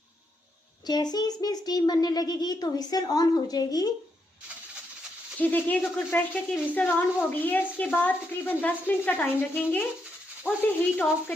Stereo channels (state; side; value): normal; both; correlation 0.80